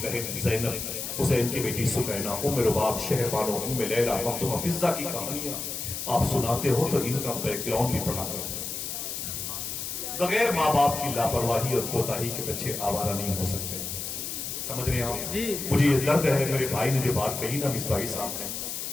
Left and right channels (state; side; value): noise; left; hiss, 5 dB below the sound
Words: زینب، حسین کی بیٹی سکینہ، ام رباب، شہربانو، ام لیلہ، مخدومہ فضہ کی کہانیاں آپ سناتے ہو تو ان کا بیک گراؤنڈ بھی پڑھا کرو. بغیر ماں باپ کی لاپرواہی اور کوتاہی کے بچے آوارہ نہیں ہو سکتے. سمجھ رہے ہیں آپ؟ مجھے یہ درد ہے، میرے بھائی نے جو بات کہی نا، مصباحی صاحب نے،